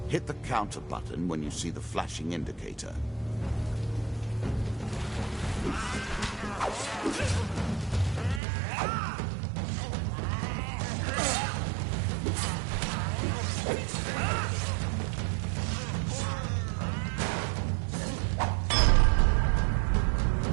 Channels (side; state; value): left; drops out; at 8.4 s